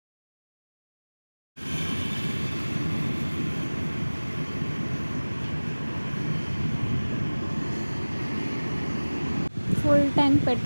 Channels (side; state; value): both; inverted; correlation -1.00